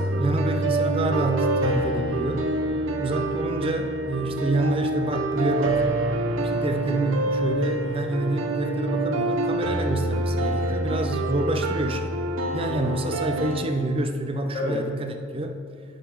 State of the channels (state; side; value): normal; both; correlation 0.46